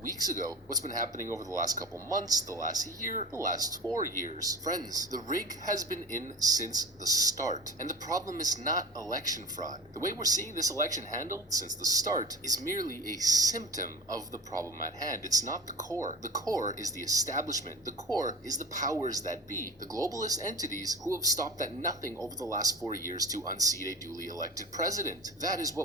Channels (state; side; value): normal; both; correlation 0.33